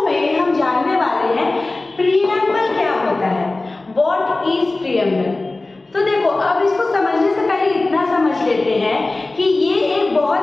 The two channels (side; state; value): right; quieter; 3.1 dB